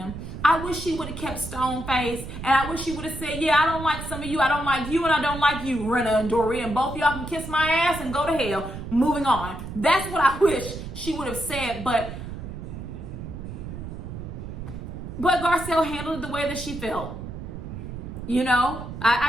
I wish she would have kept stone faced, and I wish she would have said, yeah, I don't like some of you, I don't like you, and I don't like you, Rena and Dory, and both y'all can kiss my ass and go to hell. Moving on. That's what I wish she would have said, but Garcelle handled it the way that she felt. You know,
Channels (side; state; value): right; noise; rumble, 9 dB below the sound